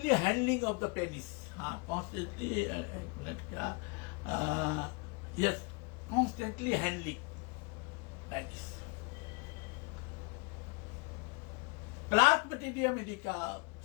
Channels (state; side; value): quieter; right; 30.3 dB